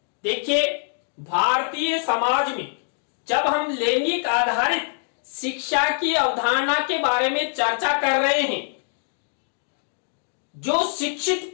देखिए, भारतीय समाज में जब हम लैंगिक आधारित शिक्षा की अवधारणा के बारे में चर्चा कर रहे हैं, जो शिक्षित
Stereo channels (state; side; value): silent; right; digital silence